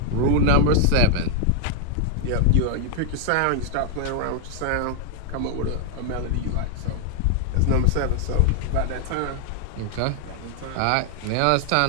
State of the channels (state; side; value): different; both; correlation 0.00